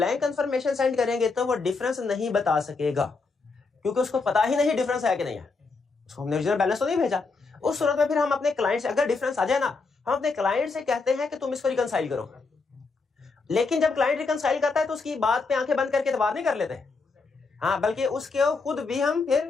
कंफर्मेशन सेंड करेंगे तो वो डिफरेंस नहीं बता सकेगा, क्योंकि उसको पता ही नहीं डिफरेंस है कि नहीं है, उसको हमने ओरिजिनल बैलेंस तो नहीं भेजा। उस सूरत में फिर हम अपने क्लाइंट से, अगर डिफरेंस आ जाए ना, हम अपने क्लाइंट से कहते हैं कि तुम इसको रिकंसाइल करो। लेकिन जब क्लाइंट रिकंसाइल करता है तो उसकी बात पे आंखें बंद करके एतबार नहीं कर लेते, हाँ, बल्कि उसके खुद भी हम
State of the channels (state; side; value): quieter; right; 4.2 dB